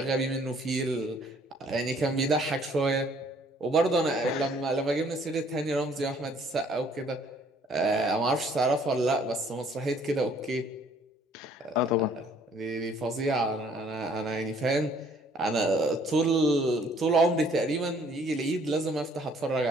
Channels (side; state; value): both; normal; correlation 0.60